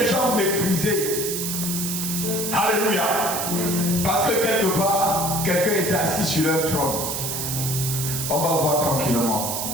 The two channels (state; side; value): noise; right; hiss, 3 dB below the sound